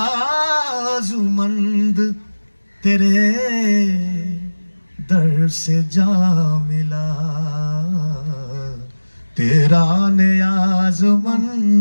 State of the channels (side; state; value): both; inverted; correlation -1.00